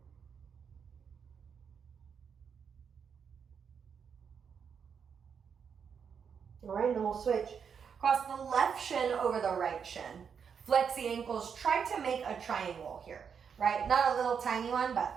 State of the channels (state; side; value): quieter; left; 6.8 dB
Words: All right, then we'll switch. Cross the left shin over the right shin. Flex the ankles, try to make a triangle here, right? Not a little tiny one,